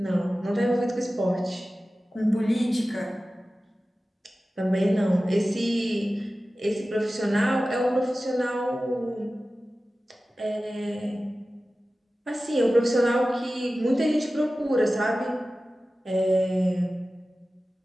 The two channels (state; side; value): normal; both; correlation 0.95